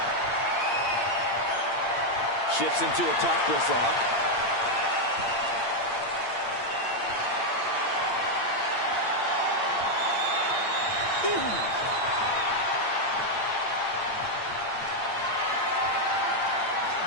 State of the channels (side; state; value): right; late; 8.8 ms